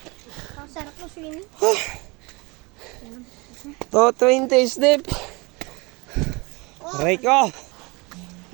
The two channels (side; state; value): left; quieter; 26.8 dB